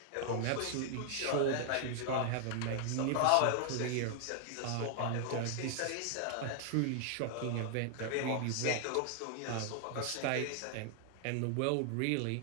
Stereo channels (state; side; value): different; both; correlation 0.00